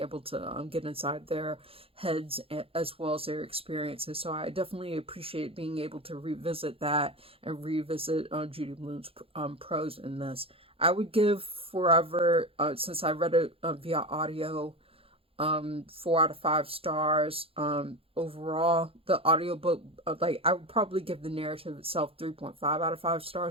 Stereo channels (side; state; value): left; late; 0.27 ms